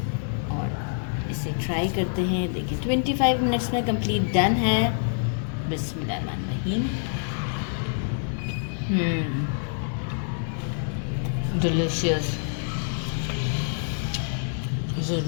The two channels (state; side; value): silent; right; 61 dB below the other